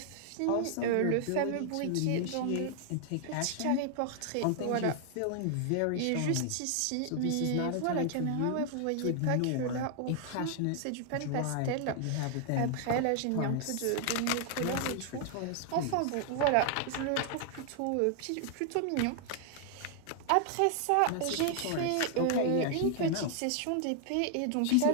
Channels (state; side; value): different; both; correlation 0.00